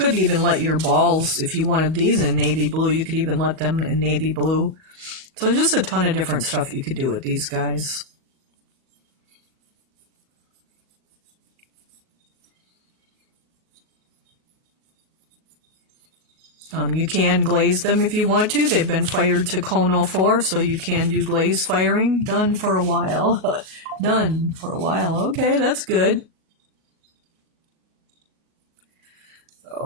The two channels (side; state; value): left; late; 38 ms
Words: even let your balls, if you wanted these in navy blue, you could even let them in navy blue. So there's just a ton of different stuff you could do with these guys. You can glaze them if you want to. They've been fired to cone 04, so you can do glaze firing. Done for a while. Done for a while. Okay, that's good.